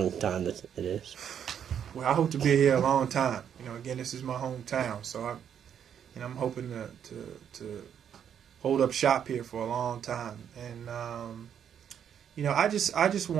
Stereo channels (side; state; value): left; quieter; 8.7 dB